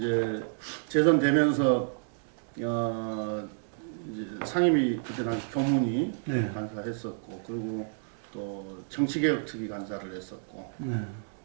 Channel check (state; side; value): silent; left; digital silence